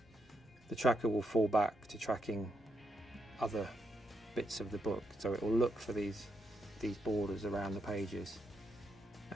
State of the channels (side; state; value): both; normal; correlation 0.80